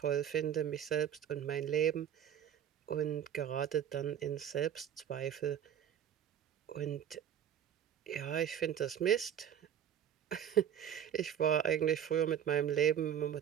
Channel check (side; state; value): left; quieter; 9.5 dB